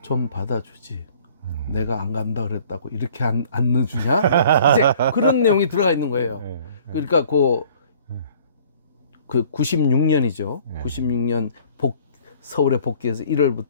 좀 받아주지. 내가 안 간다 그랬다고 이렇게 안 넣어주냐? 이제 그런 내용이 들어가 있는 거예요. 그러니까 그 96년이죠. 96년 서울에 복귀해서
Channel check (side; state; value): both; inverted; correlation -0.54